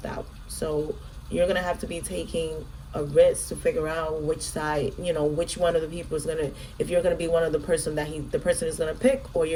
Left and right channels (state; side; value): identical; both; correlation 1.00